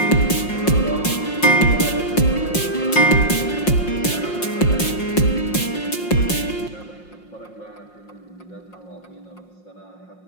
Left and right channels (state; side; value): late; right; 5.6 ms